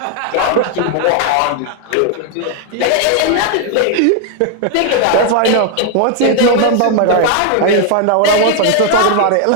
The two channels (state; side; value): different; both; correlation 0.00